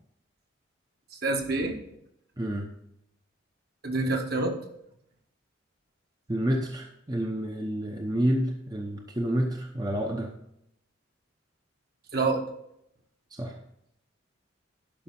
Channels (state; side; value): normal; both; correlation 0.67